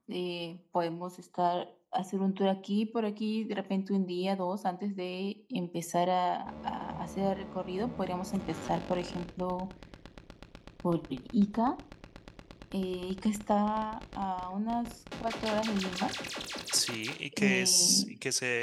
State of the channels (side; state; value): both; identical; correlation 1.00